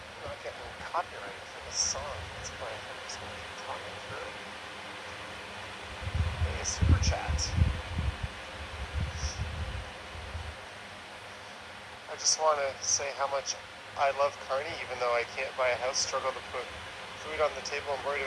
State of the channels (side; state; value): both; identical; correlation 1.00